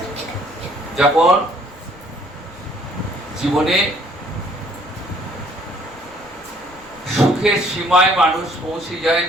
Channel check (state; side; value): noise; left; rumble, 24 dB below the sound